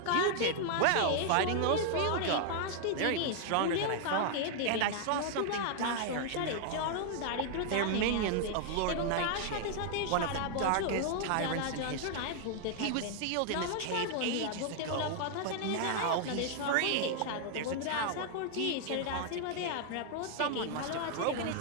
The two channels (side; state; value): both; different; correlation 0.00